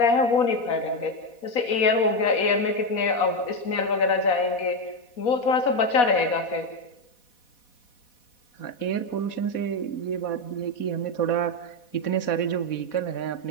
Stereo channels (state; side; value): late; right; 4.1 ms